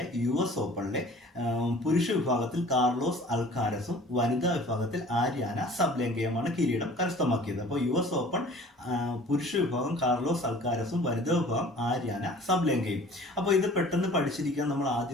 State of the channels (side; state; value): both; normal; correlation 0.48